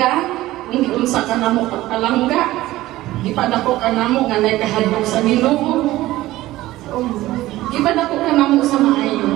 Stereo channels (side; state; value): left; quieter; 16.6 dB